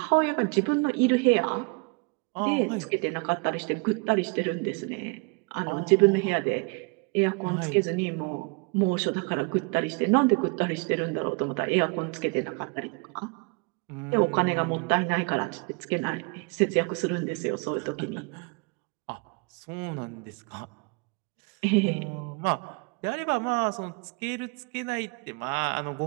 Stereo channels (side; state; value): left; quieter; 31.7 dB